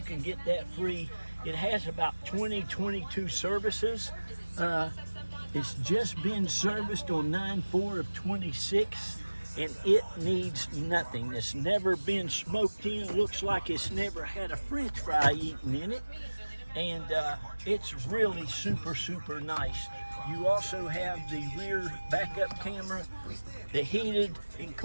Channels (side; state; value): both; inverted; correlation -1.00